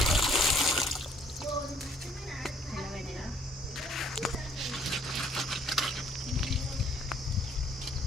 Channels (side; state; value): both; normal; correlation 0.62